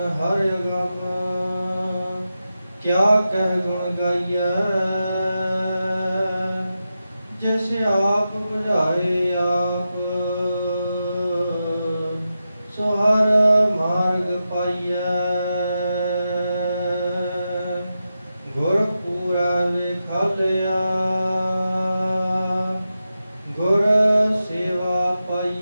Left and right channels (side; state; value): both; inverted; correlation -0.90